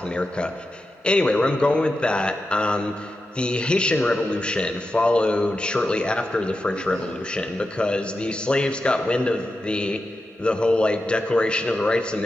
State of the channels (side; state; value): both; normal; correlation 0.90